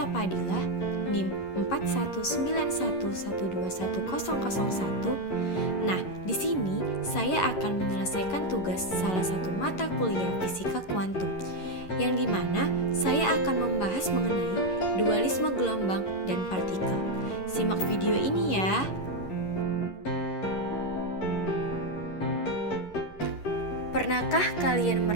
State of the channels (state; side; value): late; right; 11 ms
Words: Padilla, NIM 4191121001. Nah, di sini saya akan menyelesaikan tugas salah satu mata kuliah fisika kuantum, yang dimana saya akan membahas mengenai dualisme gelombang dan partikel. Simak video ini ya. Pernahkah kalian